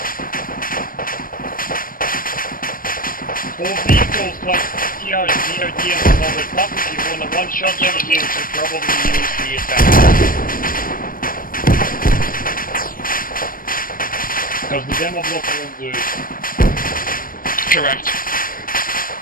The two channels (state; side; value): late; right; 0.41 ms